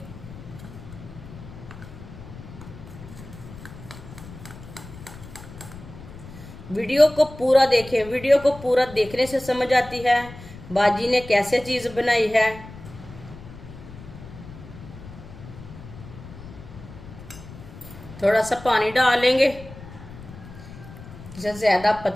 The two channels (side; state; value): left; noise; rumble, 15 dB below the sound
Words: वीडियो को पूरा देखें। वीडियो को पूरा देखने से समझ आती है बाजी ने कैसे चीज बनाई है। थोड़ा सा पानी डाल लेंगे। इसे ज्यादा